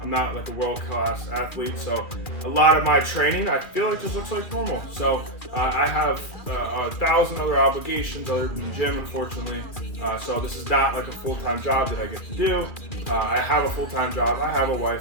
not like a world-class athlete. So a lot of my training, I feel like just looks like normal. So I have 1,000 other obligations other than the gym, unfortunately. So this is not like a full-time job that I get to do. I have a full-time job. I have a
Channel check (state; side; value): late; right; 2.4 ms